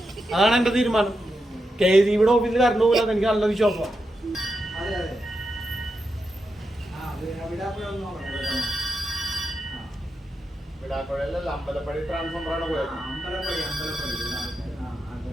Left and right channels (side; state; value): both; normal; correlation 0.87